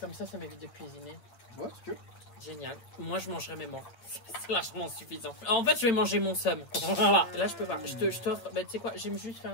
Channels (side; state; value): right; late; 8.8 ms